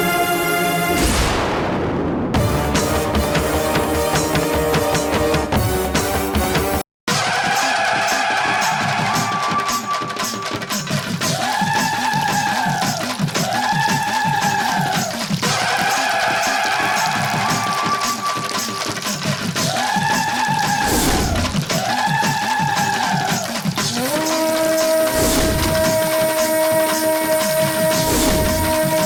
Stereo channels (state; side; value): identical; both; correlation 1.00